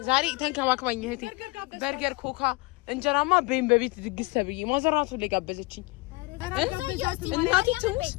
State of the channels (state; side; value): quieter; right; 24.0 dB